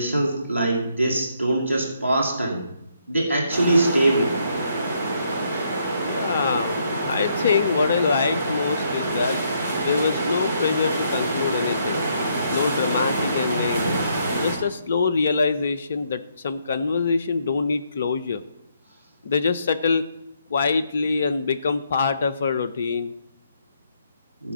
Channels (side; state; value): both; inverted; correlation -0.73